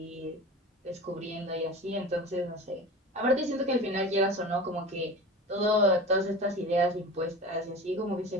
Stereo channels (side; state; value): both; normal; correlation 0.33